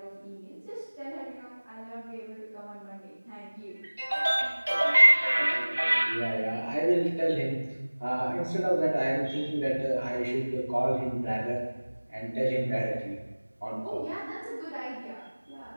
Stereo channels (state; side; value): inverted; both; correlation -1.00